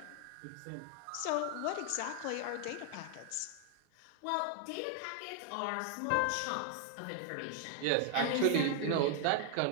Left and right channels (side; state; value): both; different; correlation 0.00